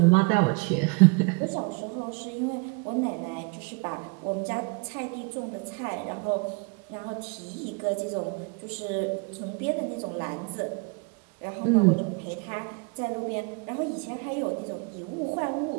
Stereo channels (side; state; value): left; quieter; 31.0 dB